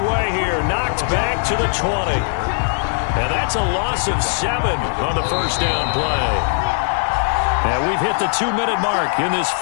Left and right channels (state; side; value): silent; right; digital silence